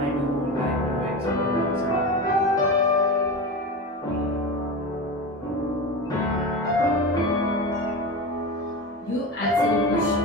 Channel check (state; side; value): normal; both; correlation 0.25